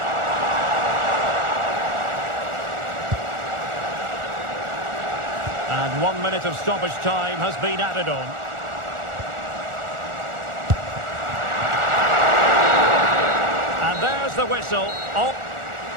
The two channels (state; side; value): late; left; 1.4 ms